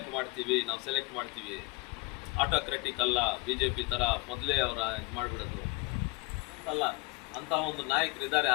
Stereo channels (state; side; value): quieter; right; 25.3 dB